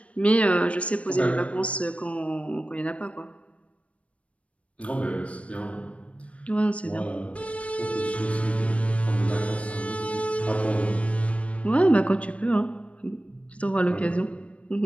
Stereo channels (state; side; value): late; right; 0.063 ms